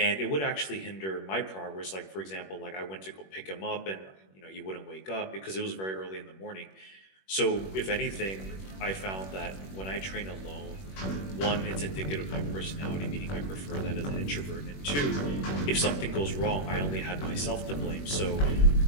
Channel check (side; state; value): right; late; 21 ms